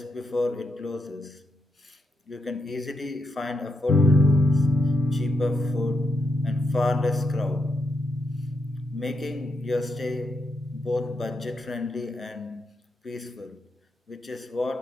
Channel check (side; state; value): both; normal; correlation 0.82